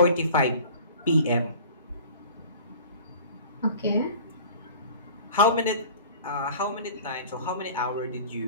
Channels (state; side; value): inverted; both; correlation -0.43